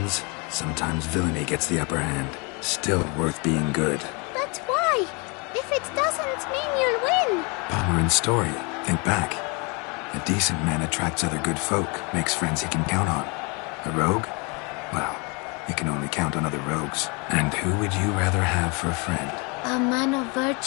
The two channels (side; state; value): right; quieter; 31.1 dB